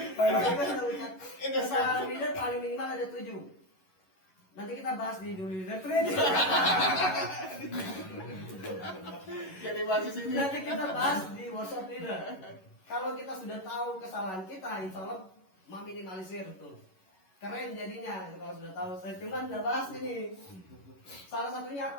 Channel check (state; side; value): late; right; 11 ms